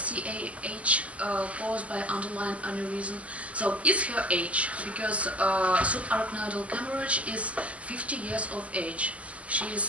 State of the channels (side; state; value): left; late; 0.064 ms